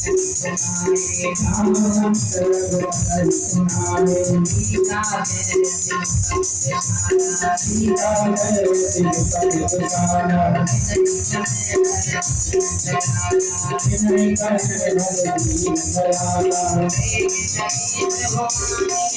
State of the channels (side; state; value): both; identical; correlation 1.00